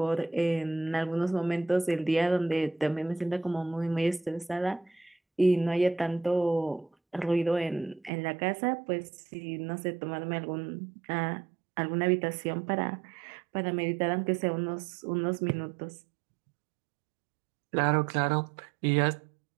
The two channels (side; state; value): left; drops out; at 8.1 s